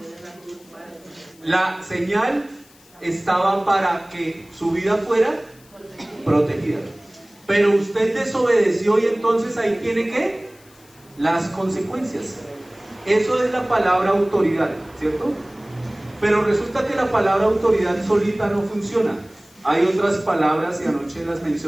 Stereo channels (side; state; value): left; noise; hiss, 27 dB below the sound